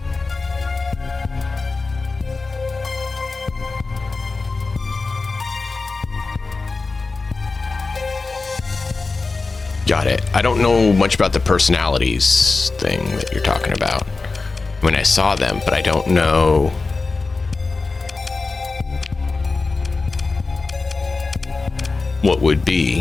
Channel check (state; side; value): quieter; right; 3.9 dB